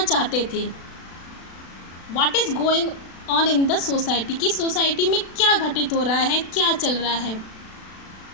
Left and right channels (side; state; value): right; late; 36 ms